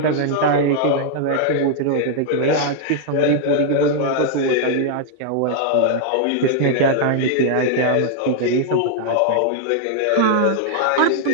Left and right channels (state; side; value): different; both; correlation -0.01